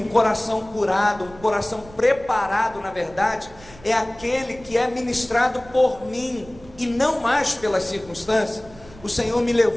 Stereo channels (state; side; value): noise; right; rumble, 22 dB below the sound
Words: coração curado, um coração preparado, na verdade, é aquele que é ministrado por mim e não mais pelas circunstâncias. O Senhor me